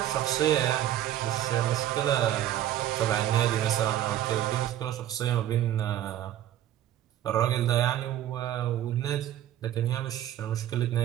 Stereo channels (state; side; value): quieter; left; 12.1 dB